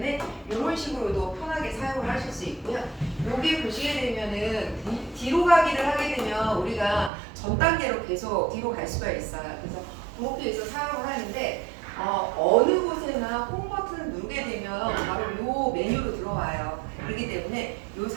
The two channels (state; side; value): drops out; left; at 7.1 s